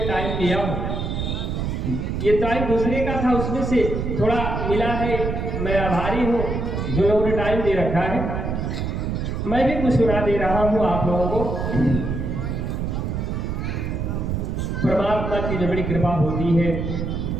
टाइम लिया हूँ, ये टाइम दूसरे का था, उसमें से थोड़ा मिला है। मैं आभारी हूँ जो लोगों ने टाइम दे रखा है। मैं भी कुछ सुना दे रहा हूँ आप लोगों को। परमात्मा की जब बड़ी कृपा होती है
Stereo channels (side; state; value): right; noise; rumble, 2 dB below the sound